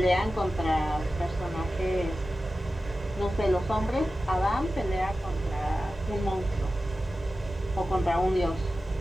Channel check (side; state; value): both; normal; correlation 0.94